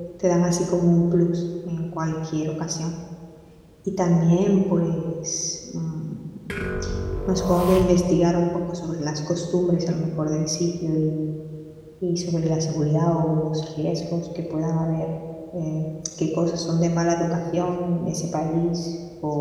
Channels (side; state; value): both; identical; correlation 1.00